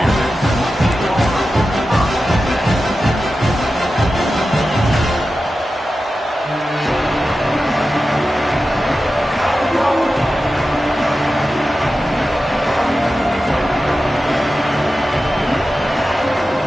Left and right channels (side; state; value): both; normal; correlation 0.93